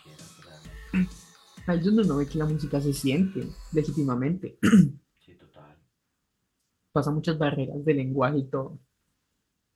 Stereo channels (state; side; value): identical; both; correlation 1.00